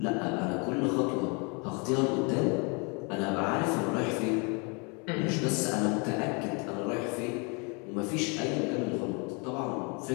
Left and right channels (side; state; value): right; quieter; 33.1 dB